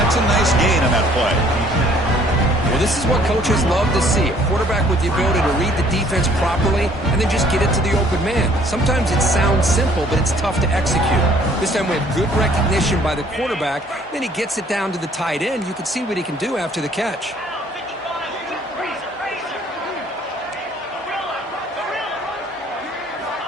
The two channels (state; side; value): normal; both; correlation 0.59